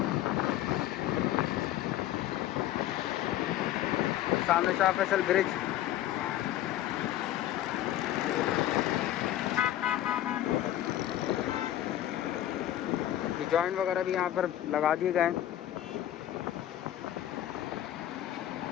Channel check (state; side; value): quieter; right; 12.8 dB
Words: सामने शाह फैसल ब्रिज, ये जॉइंट वगैरह भी यहाँ पर लगा दिए गए हैं।